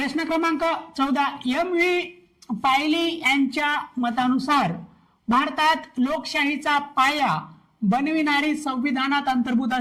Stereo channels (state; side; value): identical; both; correlation 1.00